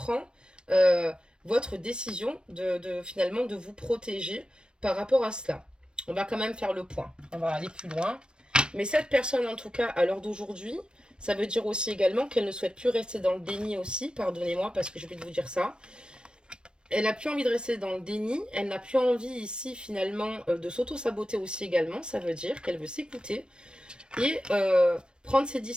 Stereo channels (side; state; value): left; late; 0.053 ms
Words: votre décision finalement de vous protéger par rapport à cela. On va quand même faire le point, on va aller plus loin. Mais cette personne, en tout cas, à l'heure d'aujourd'hui, ça veut dire aussi également qu'elle ne souhaite plus rester dans le déni aussi, pardonnez-moi parce que j'ai oublié de vous dire ça. Elle n'a plus envie de rester dans le déni, elle n'a plus envie ici finalement de s'auto-saboter aussi également, ça veut dire qu'elle veut s'écouter et prendre ses